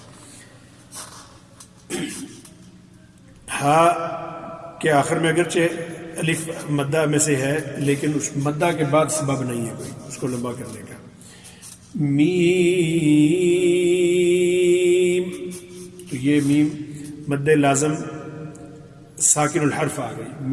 ہا کے آخر میں اگرچہ الف مدہ میں سے ہے لیکن اس مدہ کے بعد سبب نہیں ہے کوئی اس کو لمبا کرنے کا. میم، تو یہ میم مد لازم ساکن الحرف آ گئی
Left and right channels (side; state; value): both; identical; correlation 1.00